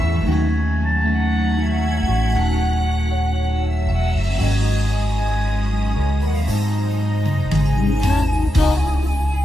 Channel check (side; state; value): both; normal; correlation 0.86